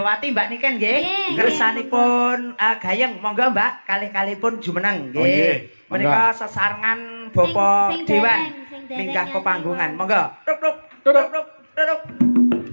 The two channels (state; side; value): inverted; both; correlation -1.00